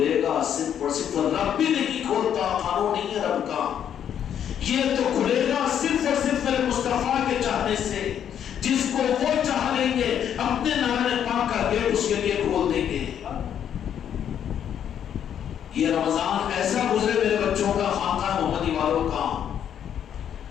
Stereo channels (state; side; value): quieter; right; 9.3 dB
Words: گا صرف اور صرف، رب بھی نہیں کھولتا، قانون نہیں ہے رب کا، یہ تو کھلے گا صرف اور صرف میرے مصطفیٰ کے چاہنے سے، جس کو وہ چاہ لیں گے اپنے نعرہ پاک کا گیٹ اس کے لیے کھول دیں گے۔ یہ رمضان ایسا گزرے میرے بچوں کا، خانقاہ محمدی والوں کا،